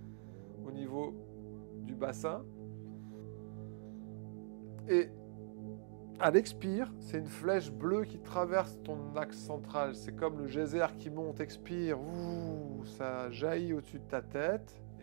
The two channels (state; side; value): silent; left; digital silence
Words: au niveau du bassin. Et à l'expire, c'est une flèche bleue qui traverse ton axe central. C'est comme le geyser qui monte, expire. Ouh, ça jaillit au-dessus de ta tête.